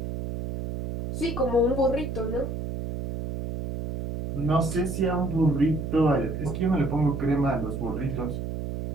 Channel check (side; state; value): right; noise; hum, 5 dB below the sound